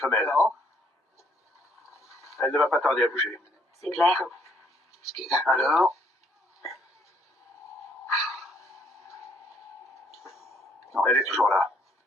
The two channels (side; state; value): both; normal; correlation 0.66